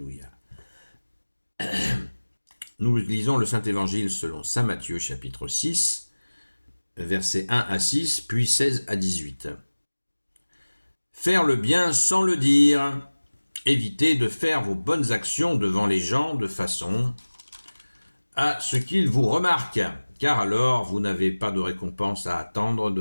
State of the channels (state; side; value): inverted; both; correlation -1.00